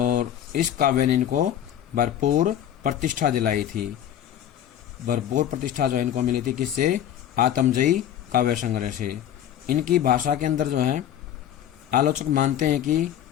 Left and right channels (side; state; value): right; quieter; 10.7 dB